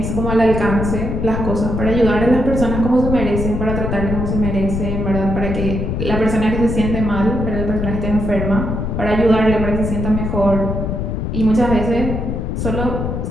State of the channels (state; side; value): noise; left; rumble, 2 dB below the sound